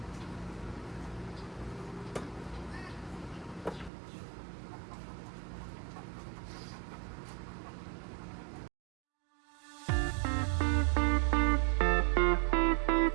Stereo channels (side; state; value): left; drops out; at 3.9 s